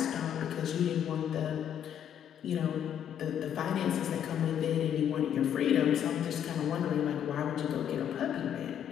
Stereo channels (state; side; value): quieter; right; 9.4 dB